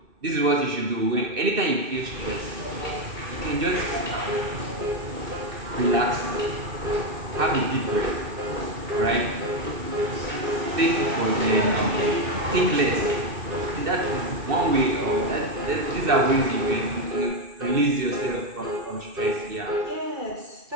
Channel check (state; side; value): late; left; 2.7 ms